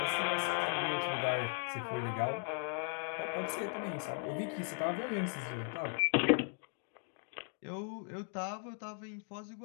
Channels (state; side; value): quieter; right; 38.7 dB